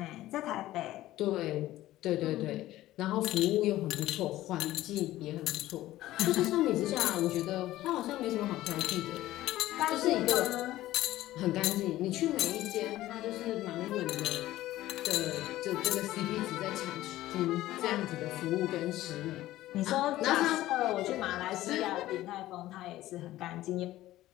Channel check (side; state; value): right; quieter; 15.4 dB